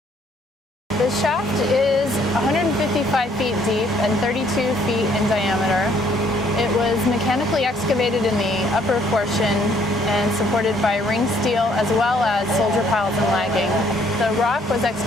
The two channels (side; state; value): both; normal; correlation 0.64